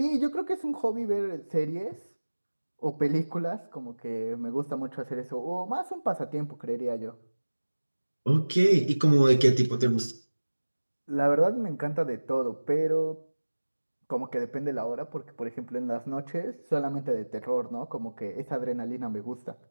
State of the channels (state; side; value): inverted; both; correlation -1.00